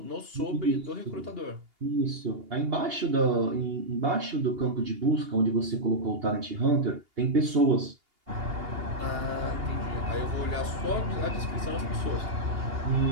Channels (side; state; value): left; late; 2.8 ms